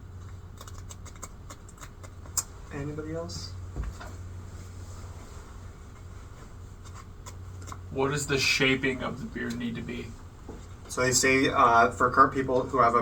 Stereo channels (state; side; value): identical; both; correlation 1.00